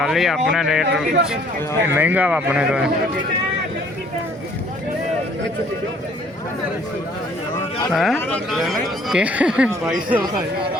ਲਈ ਆਪਣਾ ਰੇਟ ਇਹ ਮਹਿੰਗਾ ਵਾ ਆਪਣੇ ਤੋਂ ਹਾਂ ਕਿ 2200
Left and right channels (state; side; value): normal; both; correlation 0.59